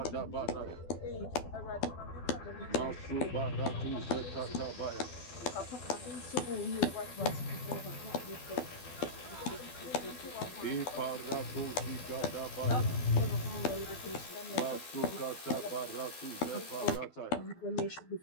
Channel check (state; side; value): late; right; 12 ms